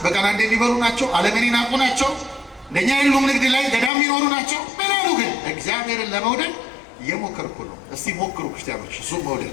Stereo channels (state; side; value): drops out; right; at 3.9 s